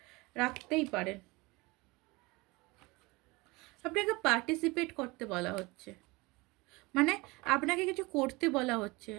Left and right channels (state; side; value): quieter; left; 23.9 dB